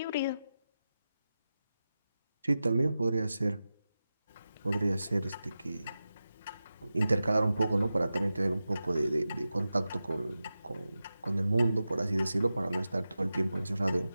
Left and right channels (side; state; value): both; inverted; correlation -0.93